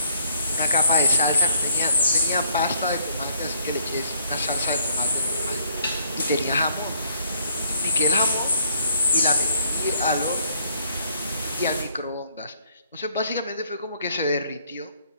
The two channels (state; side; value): inverted; both; correlation -0.66